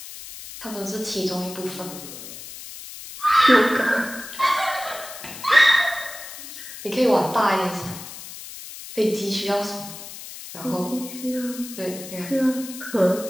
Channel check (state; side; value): noise; left; hiss, 13 dB below the sound